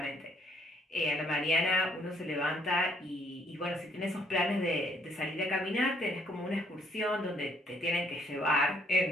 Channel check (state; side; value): normal; both; correlation 0.66